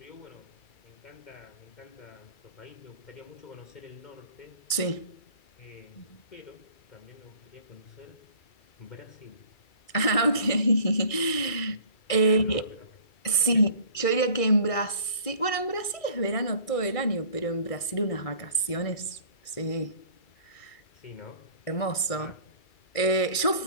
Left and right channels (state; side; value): late; right; 2.3 ms